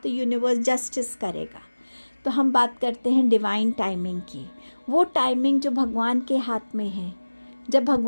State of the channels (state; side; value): inverted; both; correlation -1.00